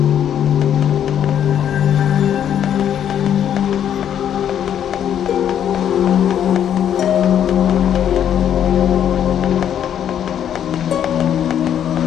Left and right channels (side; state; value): right; quieter; 9.6 dB